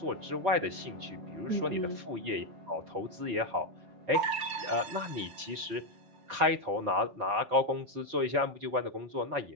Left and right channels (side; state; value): left; late; 4.6 ms